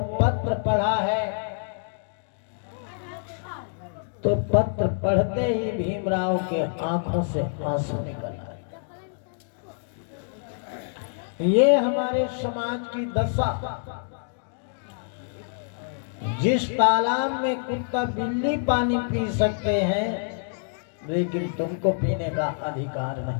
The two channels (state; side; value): silent; right; digital silence